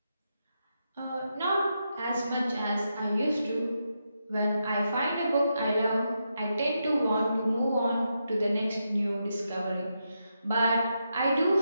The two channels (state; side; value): inverted; both; correlation -0.84